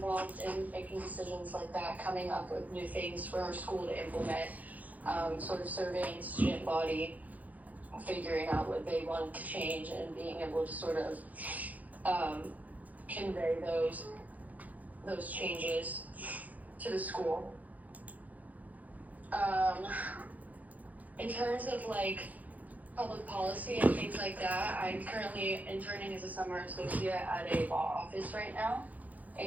in making decisions like that, coming up with new things for our school to implement, sort of surveying student body, figuring out what they wanted to change and being able to sort of convey those changes to the school. In terms of like public policy and things like that, I'm currently interning as a summer associate at a law office right now,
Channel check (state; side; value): late; left; 0.078 ms